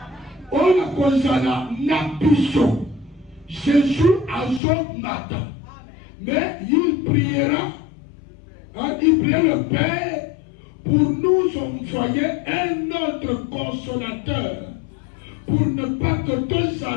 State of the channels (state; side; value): drops out; right; at 4.6 s